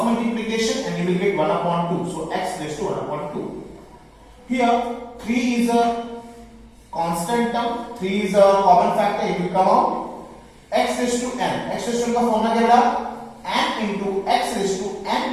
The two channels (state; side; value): identical; both; correlation 1.00